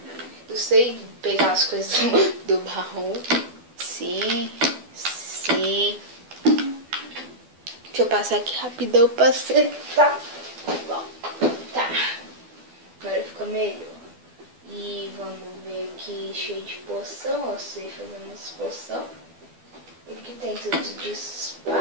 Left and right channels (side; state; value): left; late; 12 ms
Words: Eu sei pegar as coisas do baú. Sim. Deixa eu passar aqui rapidão pra acertar. Bom, tá. Agora fica melhor. E vamos ver aqui, cheio de poção. Eu sei fazer umas poção. Aqui tem tudo de